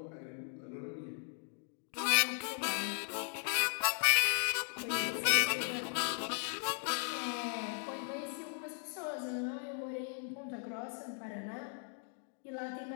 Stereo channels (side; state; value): right; silent; 53 dB below the other